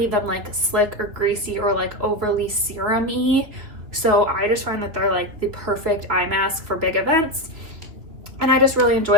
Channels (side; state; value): left; late; 2.7 ms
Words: them like slick or greasy or like overly serum-y. So I just find that they're like the perfect eye mask for big events, and I just really